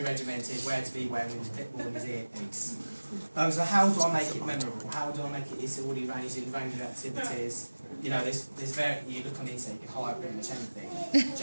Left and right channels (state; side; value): inverted; both; correlation -1.00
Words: regimented, where to be when, with his clipboard and his earpiece. So how do I make it memorable? How do I make it? It's already arranged in range of activities. You know, there's you look on the internet, you can hire pretty much anything.